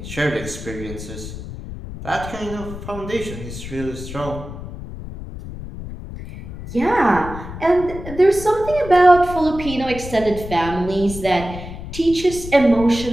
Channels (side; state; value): left; noise; rumble, 11 dB below the sound